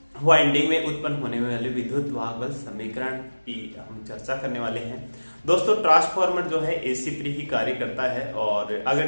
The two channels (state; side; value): inverted; both; correlation -1.00